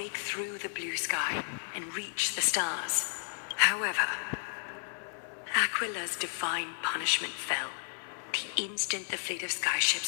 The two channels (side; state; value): right; silent; 56 dB below the other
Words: through the blue sky and reach the stars. However, Aquila's divine punishment fell the instant the fleet of